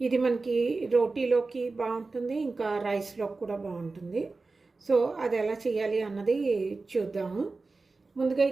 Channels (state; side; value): quieter; left; 3.8 dB